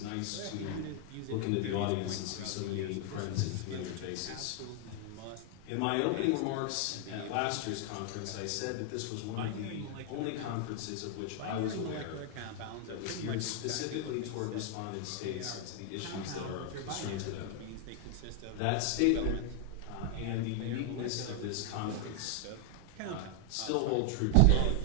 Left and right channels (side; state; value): both; different; correlation 0.00